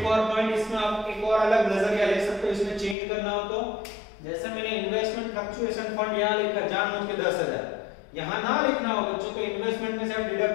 और पॉइंट इसमें आप एक और अलग नजरिया ले सकते हो, इसमें चेंज करना हो तो जैसे मैंने इन्वेस्टमेंट फ्लक्चुएशन फंड यहाँ लिखा जानबूझ के 10,000, यहाँ ना लिखना हो बच्चों तो इन्वेस्टमेंट में से आप डिडक्ट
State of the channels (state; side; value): drops out; right; at 3.0 s